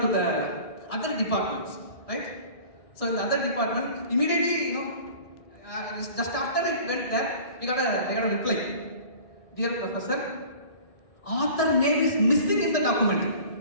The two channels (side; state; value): right; late; 1.6 ms